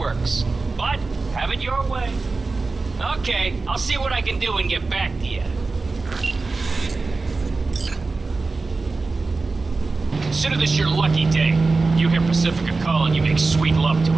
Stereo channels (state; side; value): quieter; left; 3.8 dB